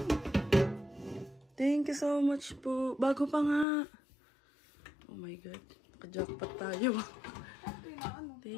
Thank you so much po. Bago pa nga. Oh my God. Naka-jackpot tayo.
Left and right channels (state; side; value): drops out; right; at 3.7 s